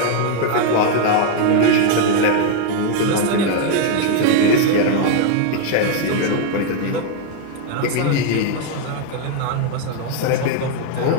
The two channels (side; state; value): both; different; correlation 0.00